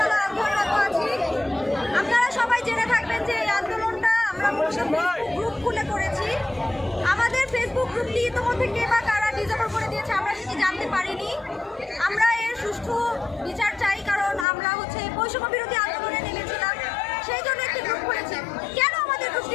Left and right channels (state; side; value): drops out; right; at 14.5 s